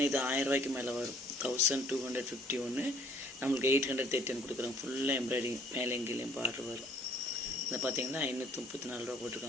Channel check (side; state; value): both; normal; correlation 0.59